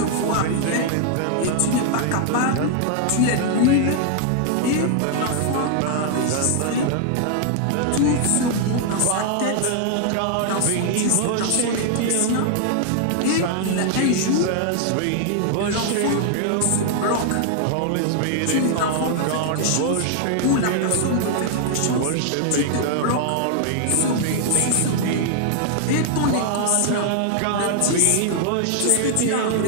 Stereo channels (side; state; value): both; different; correlation 0.00